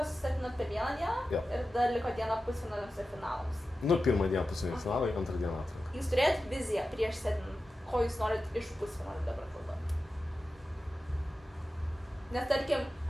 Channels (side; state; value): both; normal; correlation 0.93